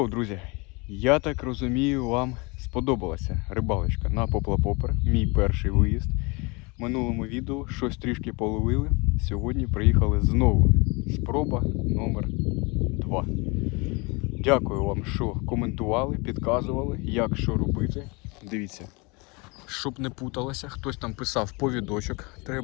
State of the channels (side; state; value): right; quieter; 27.8 dB